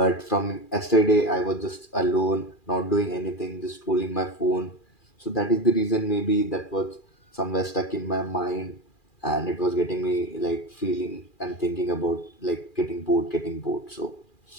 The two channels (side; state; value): right; late; 2.4 ms